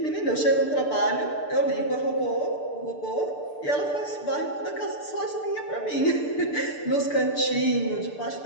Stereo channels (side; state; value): right; late; 6.8 ms